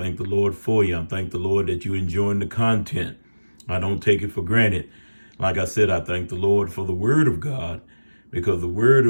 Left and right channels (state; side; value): inverted; both; correlation -1.00